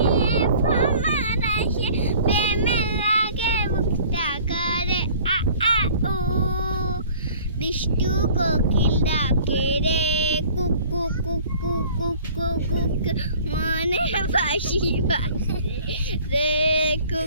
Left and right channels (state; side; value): inverted; both; correlation -0.49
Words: ফমার আসে প্রেমের লাগে বুকটা করে আ আ উ দুষ্টু কোকিল ডাকে রে কুকু কুকু কুকু কুকু মনে বাসি বাসে রে